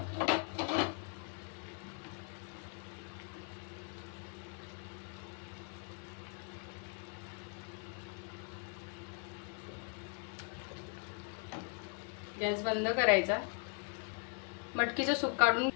गॅस बंद करायचा. मटकीचं सूप काढून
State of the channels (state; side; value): quieter; right; 38.2 dB